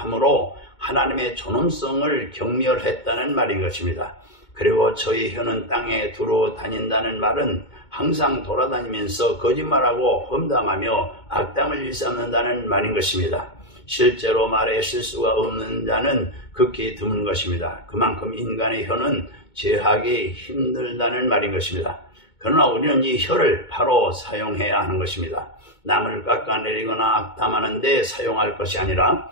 하나님의 존엄성을 경멸했다는 말인 것입니다. 그리고 저희 혀는 땅에 두루 다닌다는 말은 항상 돌아다니면서 거짓말하고 험담하며 악담을 일삼는다는 말인 것입니다. 실제로 말에 실수가 없는 자는 극히 드문 것입니다. 그만큼 인간의 혀는 제하기 힘들다는 말인 것입니다. 그러나 우리는 이 혀를 바로 사용해야 하는 것입니다. 남을 깎아내리거나 악담하는 데 사용할 것이 아니라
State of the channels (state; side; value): late; right; 2.2 ms